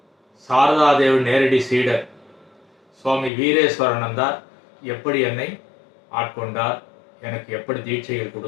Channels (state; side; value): drops out; right; at 3.3 s